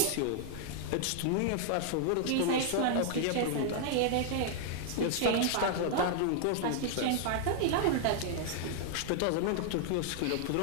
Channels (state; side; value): different; both; correlation 0.00